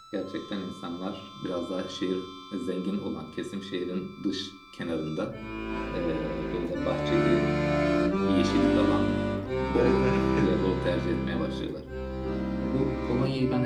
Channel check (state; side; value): identical; both; correlation 1.00